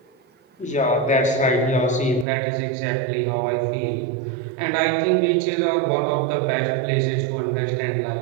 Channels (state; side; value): drops out; left; at 2.2 s